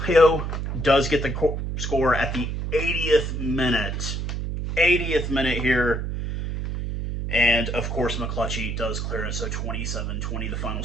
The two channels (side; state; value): right; noise; hum, 3 dB below the sound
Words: does get the score at the 80th minute. 80th minute here. And, of course, McClutchy does clear it, so 27-20 the final